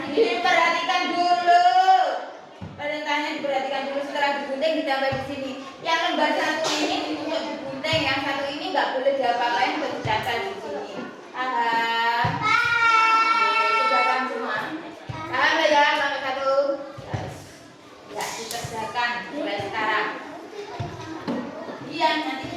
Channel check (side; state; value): both; identical; correlation 1.00